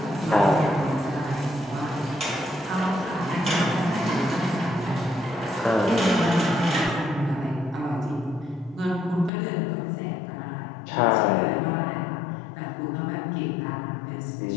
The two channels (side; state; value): right; drops out; at 9.3 s